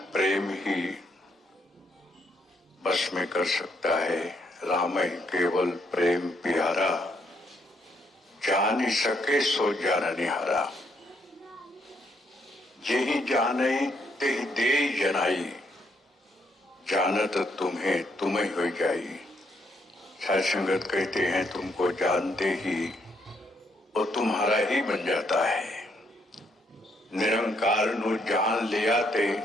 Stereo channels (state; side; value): normal; both; correlation 0.73